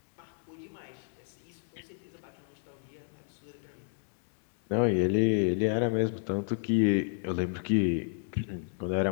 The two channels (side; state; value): right; silent; digital silence